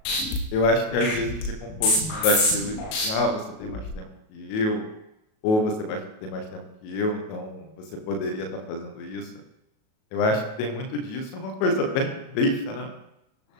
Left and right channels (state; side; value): late; right; 37 ms